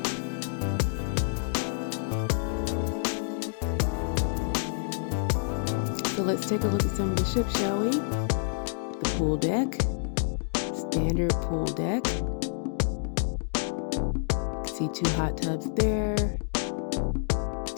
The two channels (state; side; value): silent; right; digital silence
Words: So let's take a look at some of the ship, shall we? The pool deck. Standard pool deck. See 2 hot tubs there.